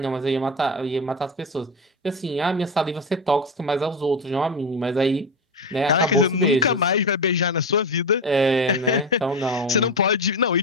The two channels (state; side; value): normal; both; correlation 0.17